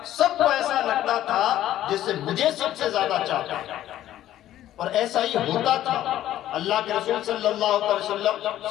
سب کو ایسا لگتا تھا جسے مجھے سب سے زیادہ چاہتا ہے، اور ایسا ہی ہوتا تھا۔ اللہ کے رسول صلی اللہ علیہ وسلم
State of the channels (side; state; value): right; quieter; 12.9 dB